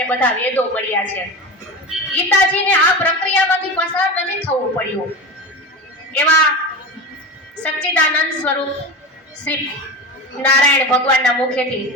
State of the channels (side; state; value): both; normal; correlation 0.27